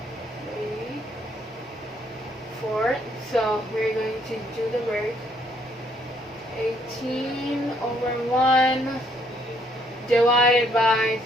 3/4. So we're going to do the work. 18/1 divided by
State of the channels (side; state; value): both; normal; correlation 0.68